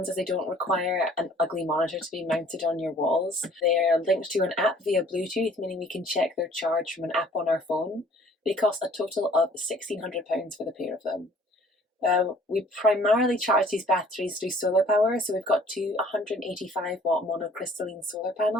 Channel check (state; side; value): normal; both; correlation 0.55